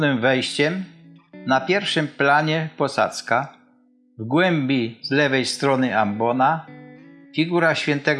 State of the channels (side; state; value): both; identical; correlation 1.00